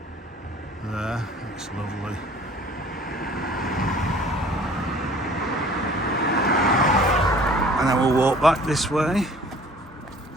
There, that's lovely. And then we'll walk back this way.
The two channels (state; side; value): normal; both; correlation 0.50